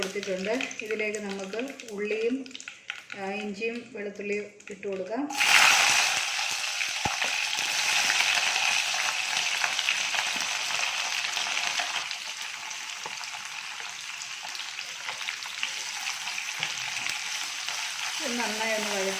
ഇതിലേക്ക് നമുക്ക് ഉള്ളിയും ഇഞ്ചിയും വെളുത്തുള്ളിയും ഇട്ട് കൊടുക്കാം. നന്നായി ഒന്ന്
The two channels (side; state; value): both; identical; correlation 1.00